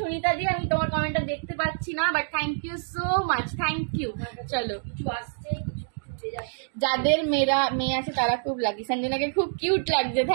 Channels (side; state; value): left; silent; digital silence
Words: দি, আমি তোমার কমেন্টটা দেখতে পাচ্ছি না, but thank you so much, thank you. চলো, কিছু আসছে, কিছু কিছু যাচ্ছে। যাদের মেয়ে আছে তারা খুব লাকি। সঞ্জনাকে খুব কিউট লাগছে,